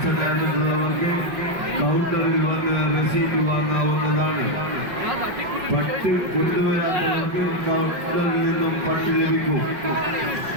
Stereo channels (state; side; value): late; left; 5.5 ms